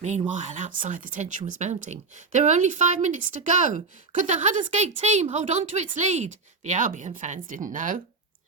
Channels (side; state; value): left; quieter; 4.4 dB